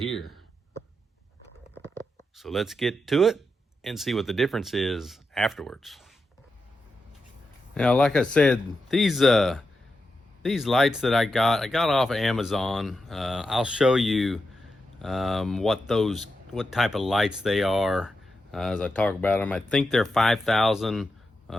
So let's get to it and see what the difference is afterwards. Now, like I said, these lights that I got off of Amazon. I'll show you what type of lights they are as I talk about them. I think they're 5,000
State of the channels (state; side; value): normal; both; correlation 0.88